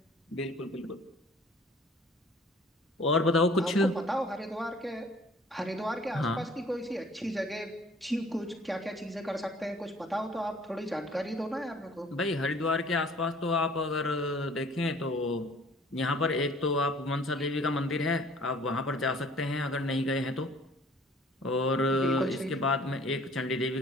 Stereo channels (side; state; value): both; normal; correlation 0.53